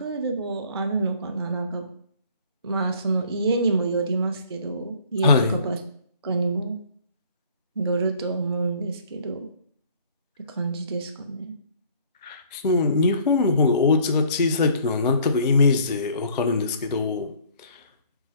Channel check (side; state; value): both; inverted; correlation -0.56